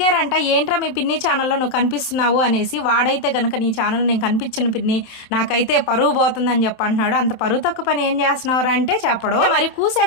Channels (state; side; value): late; right; 27 ms